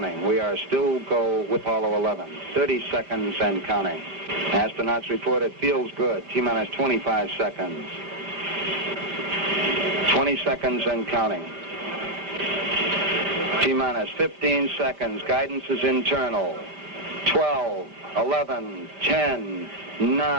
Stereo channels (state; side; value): late; left; 5.1 ms